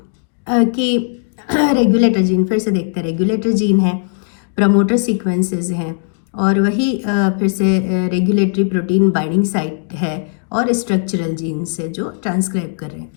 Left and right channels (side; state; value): right; silent; digital silence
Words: कि रेगुलेटर जीन फिर से देखते हैं. रेगुलेटर जीन है, प्रमोटर सीक्वेंसेस हैं और वही फिर से रेगुलेटरी प्रोटीन बाइंडिंग साइट है और स्ट्रक्चरल जीन से जो ट्रांसक्राइब कर रहे हैं.